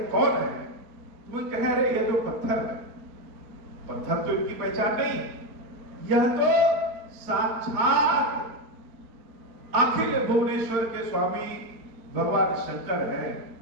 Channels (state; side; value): late; left; 4.4 ms